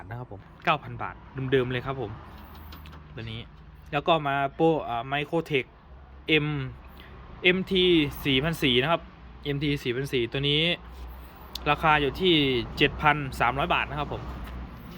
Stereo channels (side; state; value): both; identical; correlation 1.00